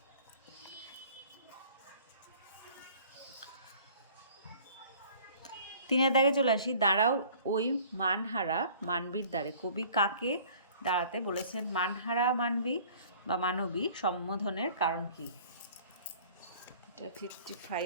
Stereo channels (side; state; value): both; inverted; correlation -0.51